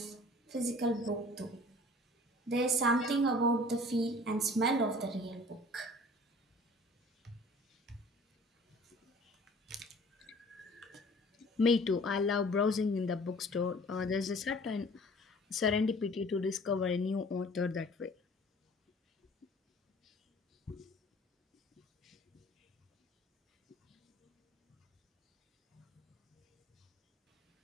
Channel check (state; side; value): normal; both; correlation 0.49